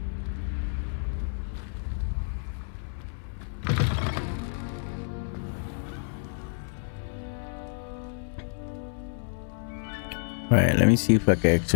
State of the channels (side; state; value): right; silent; 58 dB below the other